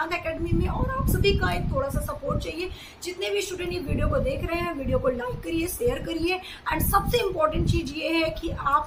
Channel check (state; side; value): identical; both; correlation 1.00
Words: एकेडमी में। और आप सभी का एक थोड़ा सा सपोर्ट चाहिए। जितने भी स्टूडेंट ये वीडियो को देख रहे हैं, वीडियो को लाइक करिए, शेयर करिए। एंड सबसे इम्पोर्टेंट चीज ये है कि